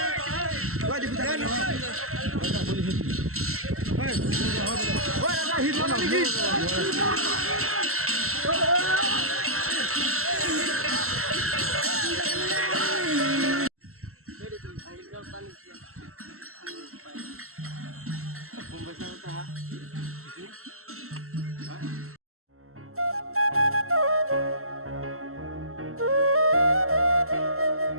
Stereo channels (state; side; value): late; left; 0.63 ms